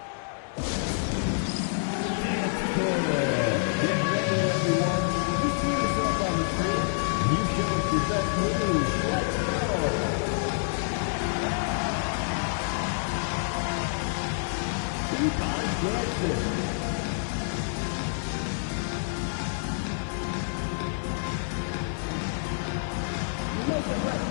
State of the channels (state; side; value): silent; right; digital silence